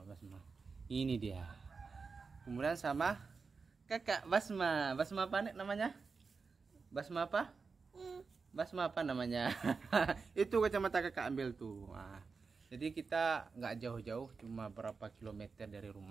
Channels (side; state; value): left; quieter; 4.8 dB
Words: Basma? Ini dia. Kemudian sama Kakak Basma. Basma apa nih namanya? Basma apa? Basma apa namanya? Itu kacamata kakak ambil tuh. Nah, jadi kita nggak jauh-jauh, cuma berapa kilometer dari